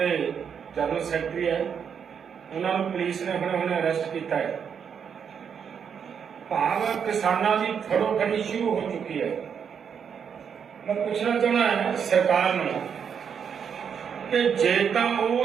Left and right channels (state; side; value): quieter; left; 7.3 dB